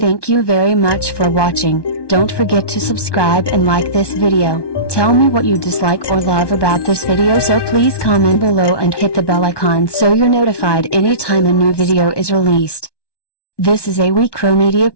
you very much for watching. Don't forget to subscribe and like this video. Tell me what you dislike or love about this video, so please comment below and hit the bell icon so you're notified anytime a new video is released. This is a WeCrow Media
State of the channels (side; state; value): right; late; 1.2 ms